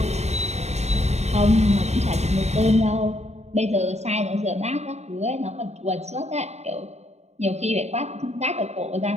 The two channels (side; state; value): left; late; 0.32 ms